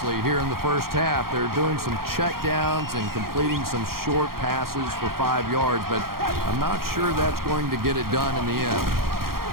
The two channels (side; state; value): left; late; 0.93 ms